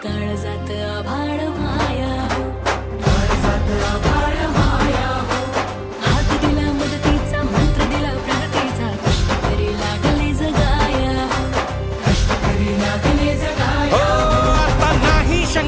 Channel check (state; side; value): identical; both; correlation 1.00